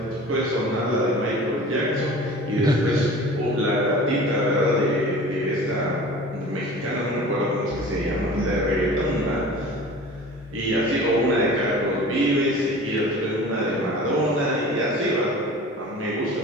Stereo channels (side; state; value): both; normal; correlation 0.41